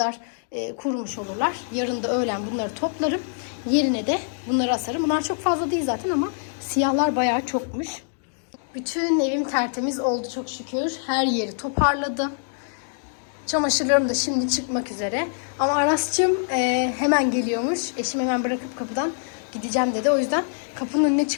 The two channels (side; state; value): right; silent; digital silence